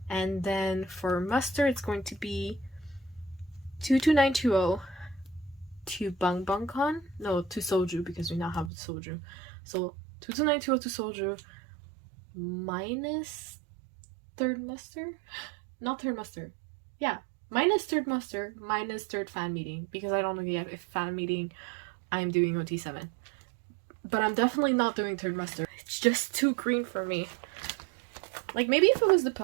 And then for muster, it's going to be 22920 to Bang Bang Con. No, to Soju, because we now have Soju. So 22920 to Soju minus third muster? Not third muster. Yeah, minus third muster, minus third fan meeting, because I don't know yet if fan meeting I'm doing OT7. But I'm definitely not doing third muster. It's just too green for me. Like, maybe if it was the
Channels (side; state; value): left; drops out; at 8.7 s